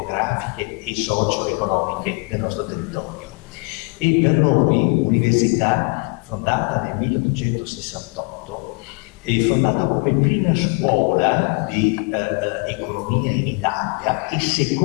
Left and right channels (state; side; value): quieter; right; 33.6 dB